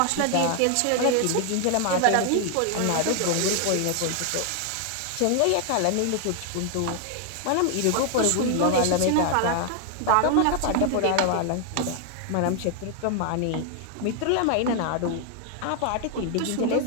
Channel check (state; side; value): different; both; correlation 0.00